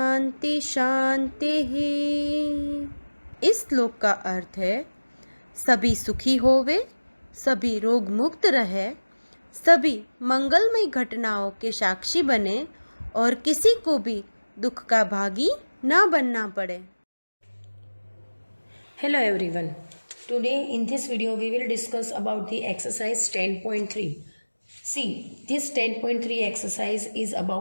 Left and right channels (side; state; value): both; inverted; correlation -1.00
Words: शांति। इस श्लोक का अर्थ है सभी सुखी होवे, सभी रोग मुक्त रहे, सभी मंगलमय घटनाओं के साक्षी बने और किसी को भी दुख का भागी ना बनना पड़े। Hello everyone. Today in this video we will discuss about the exercise 10.3. See, this 10.3 exercise is